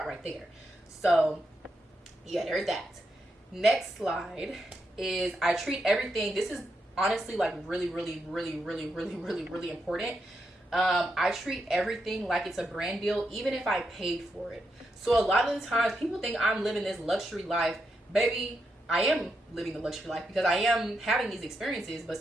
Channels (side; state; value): both; normal; correlation 0.84